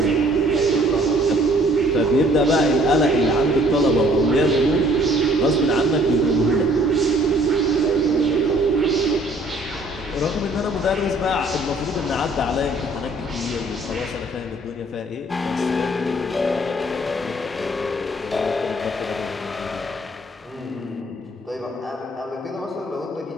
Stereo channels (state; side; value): normal; both; correlation 0.59